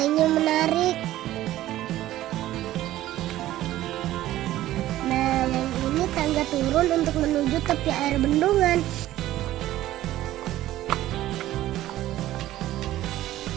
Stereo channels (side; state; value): left; quieter; 14.5 dB